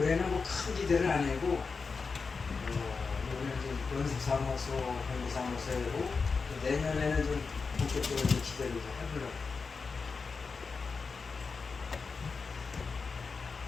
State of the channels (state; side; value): quieter; right; 4.8 dB